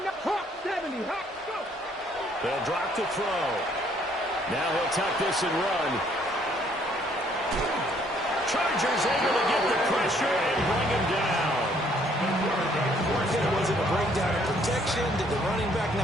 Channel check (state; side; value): normal; both; correlation 0.64